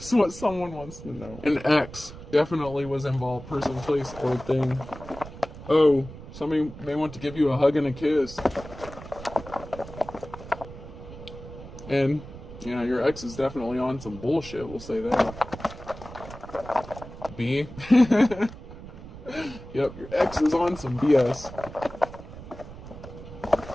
what someone wants to know. An ex definitely was involved, person, place, or thing. Oh, somebody may want to give you a hug and a kiss. And yeah, your ex is definitely on some bullshit, we'll say that. B. Yep, your ex is on some BS.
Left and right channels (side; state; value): right; noise; rumble, 14 dB below the sound